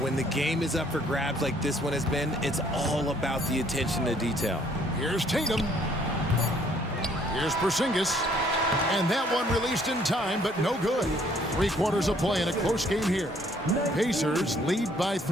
when the game is up for grabs like this one has been, it's all about the attention to detail. Here's Tatum. Here's Porzingis. And that one released in time, but no good. 3 quarters of play in a close game here. Pacers lead by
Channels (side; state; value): both; normal; correlation 0.63